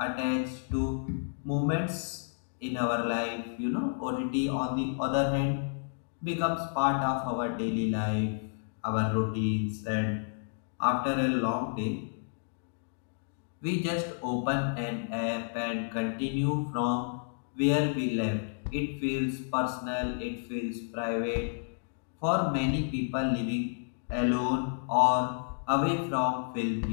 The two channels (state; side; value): silent; right; digital silence